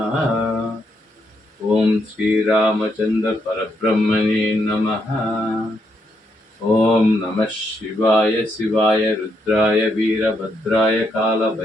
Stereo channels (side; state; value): both; normal; correlation 0.78